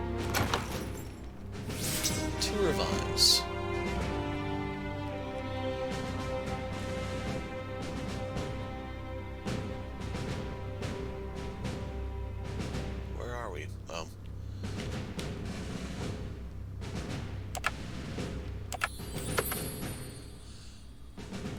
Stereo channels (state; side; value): identical; both; correlation 1.00